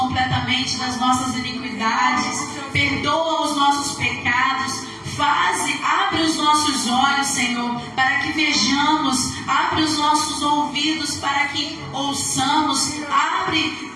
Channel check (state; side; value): identical; both; correlation 1.00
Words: das nossas iniquidades, perdoa os nossos pecados, abre os nossos olhos, Senhor, para que vejamos, abre os nossos ouvidos para que ouçamos, abre